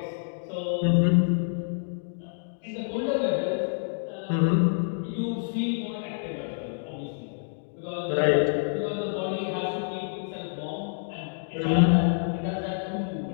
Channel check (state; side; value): silent; right; digital silence